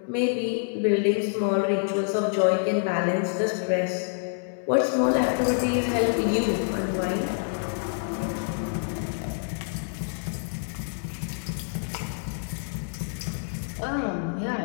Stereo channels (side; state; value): right; silent; digital silence